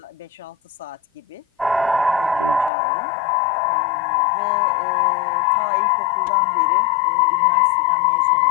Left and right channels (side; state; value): right; drops out; at 2.7 s